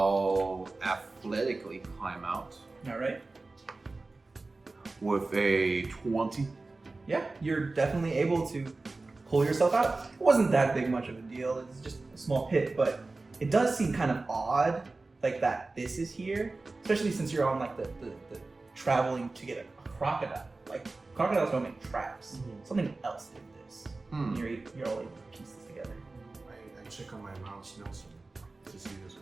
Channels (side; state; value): left; quieter; 3.4 dB